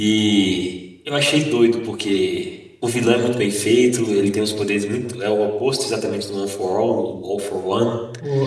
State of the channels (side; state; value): both; identical; correlation 1.00